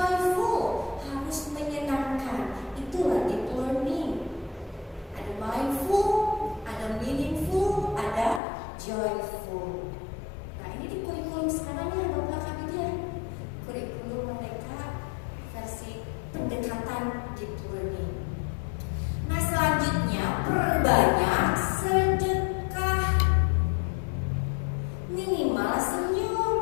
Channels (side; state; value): right; drops out; at 8.4 s